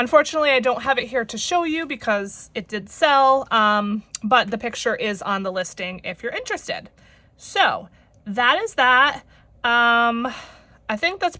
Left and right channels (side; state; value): both; identical; correlation 1.00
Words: I don't have it here to show you because it did sell, but the picture is on the listing if you're interested. So that is that. I think that's